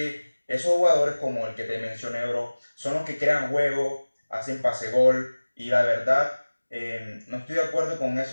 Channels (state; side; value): inverted; both; correlation -1.00